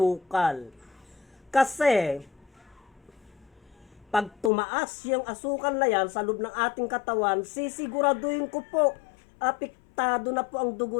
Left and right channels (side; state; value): right; drops out; at 4.5 s